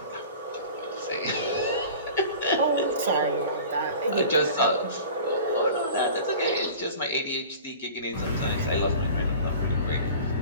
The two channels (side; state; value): both; inverted; correlation -0.40